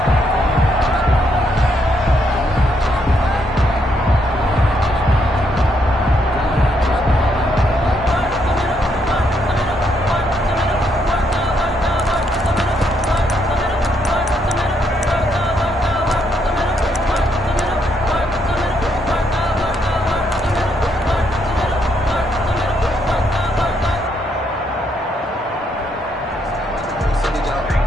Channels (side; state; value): both; normal; correlation 0.75